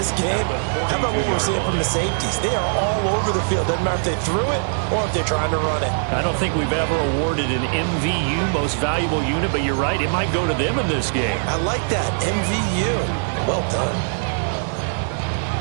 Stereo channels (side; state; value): left; silent; digital silence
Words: game, how about what we're seeing from the safeties? They are all over the field. Doesn't matter if they threw it or if they're trying to run it. I don't think we've ever awarded an MVU, most valuable unit, but you're right, it might go to them in this game. I like that, MVU. Well done.